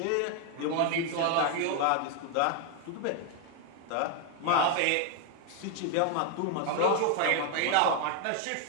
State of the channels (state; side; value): different; both; correlation 0.01